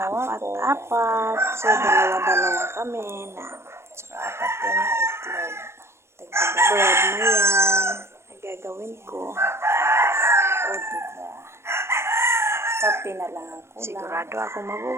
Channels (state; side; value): late; left; 0.13 ms